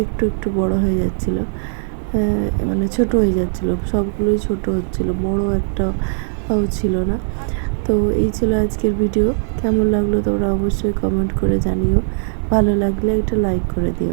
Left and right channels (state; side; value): silent; left; digital silence